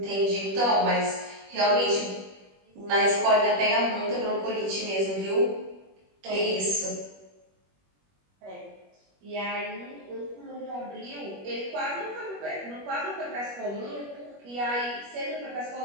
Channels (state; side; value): late; left; 21 ms